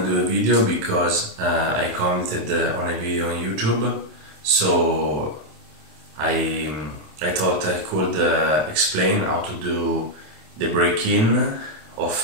to do a video because I commented on a video on YouTube, so I thought I could explain how to do the break-in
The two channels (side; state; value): left; late; 27 ms